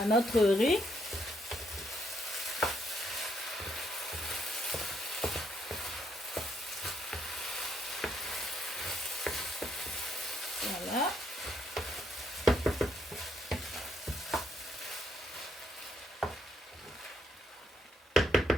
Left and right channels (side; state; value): both; normal; correlation 0.74